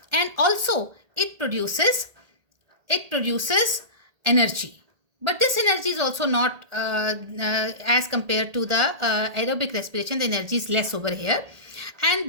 and also it produces energy. But this energy is also not as compared to the aerobic respiration, the energy is less over here.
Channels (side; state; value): left; late; 1.8 ms